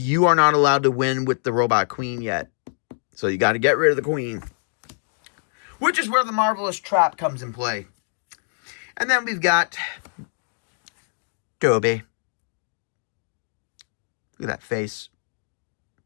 are not allowed to win with the Robot Queen yet. So you got to get rid of the Queen. Which is where the Marvelous Trap comes in play. And then we've got Toby. Look at that face.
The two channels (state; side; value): silent; right; digital silence